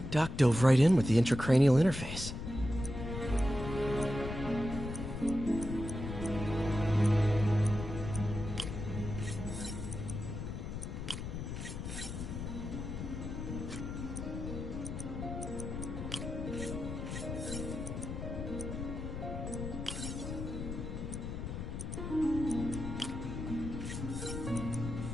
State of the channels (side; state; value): left; noise; rumble, 6 dB below the sound